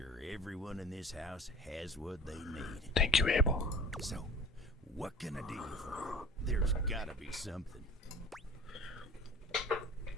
everyone in this house has what they need. Thank you, Abel. So, what can I do for you? There's gotta be something.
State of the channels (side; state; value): both; normal; correlation 0.41